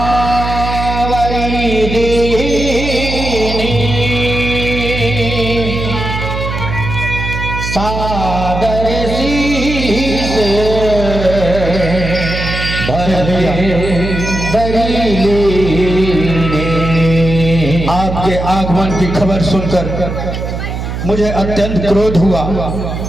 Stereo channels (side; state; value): right; noise; hum, 5 dB below the sound